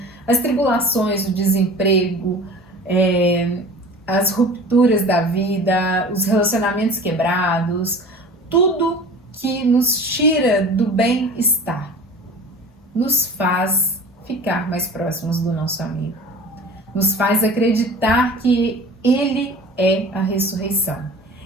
as tribulações, o desemprego, as rupturas da vida, os relacionamentos quebrados, tudo que nos tira do bem-estar, nos faz ficar mais próximos do nosso amigo, nos faz acreditar que Ele é a ressurreição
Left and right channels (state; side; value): normal; both; correlation 0.41